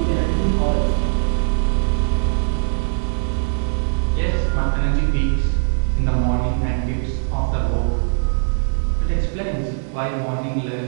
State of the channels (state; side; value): silent; left; 66 dB below the other